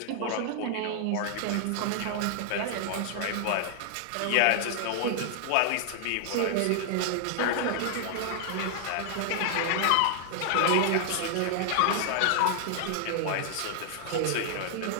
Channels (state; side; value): different; both; correlation 0.00